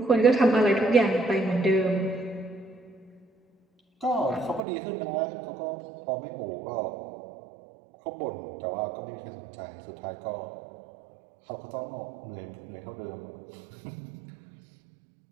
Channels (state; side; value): drops out; left; at 4.6 s